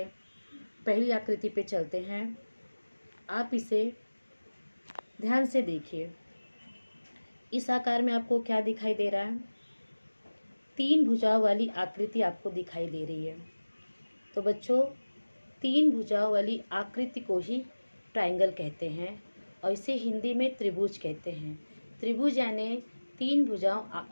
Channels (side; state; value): both; inverted; correlation -1.00